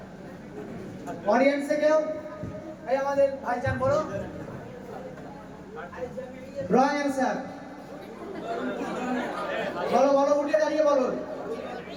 অডিয়েন্সে কেউ? এই আমাদের ভাইজান বলো। Wrong answer. বলো, বলো, উঠে দাঁড়িয়ে বলো।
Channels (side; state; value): both; identical; correlation 1.00